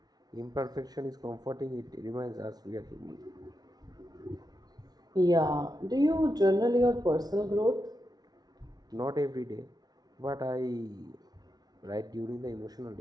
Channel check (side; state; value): left; late; 0.19 ms